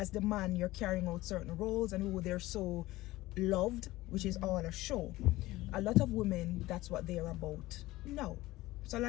the man, you're carrying out certain roles, and who they're so loved, which is all a show. A lot of women, that's what they're about. No. So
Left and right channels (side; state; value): right; quieter; 18.0 dB